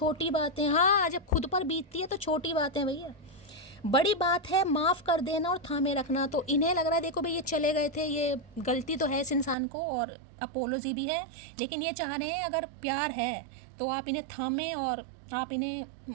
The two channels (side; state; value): left; drops out; at 9.6 s